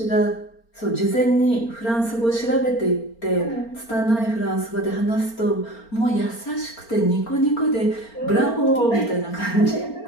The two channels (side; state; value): right; late; 4.4 ms